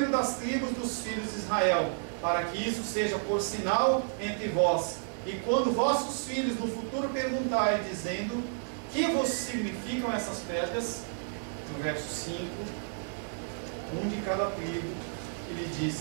das tribos dos filhos de Israel, para que isso seja por sinal entre vós. E quando vossos filhos no futuro perguntarem, dizendo: que vos significam essas pedras? No verso 5, um de cada tribo, ele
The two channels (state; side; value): silent; left; digital silence